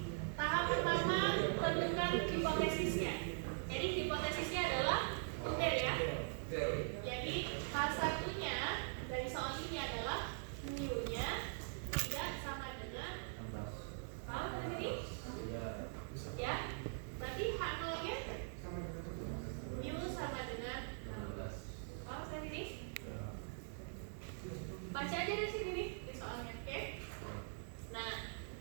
Tahap pertama, tentukan hipotesisnya. Jadi hipotesisnya adalah tutil ya. Jadi H1-nya dari soal ini adalah mu-nya tidak sama dengan, paham sampai sini? Ya. Berarti H0-nya mu sama dengan 16. Paham sampai sini? Baca aja dari sini nih di soalnya, oke? Nah,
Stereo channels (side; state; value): left; silent; digital silence